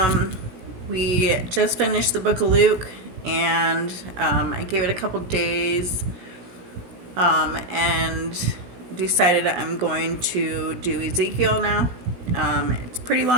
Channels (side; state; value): left; late; 17 ms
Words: we just finished the book of Luke, and I gave it a couple days and decided I'm going to do Ezekiel now. It's a pretty